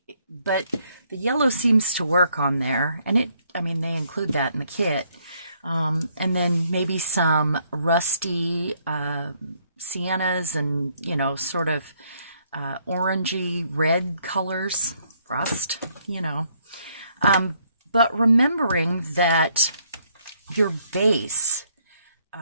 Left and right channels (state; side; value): inverted; both; correlation -0.70